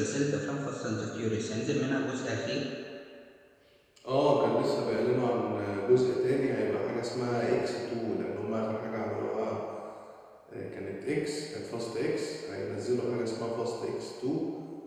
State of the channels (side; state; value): both; identical; correlation 1.00